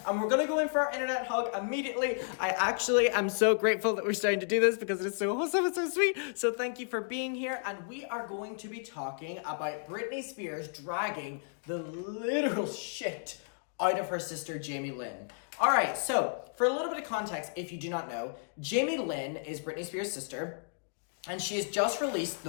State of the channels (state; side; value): silent; right; digital silence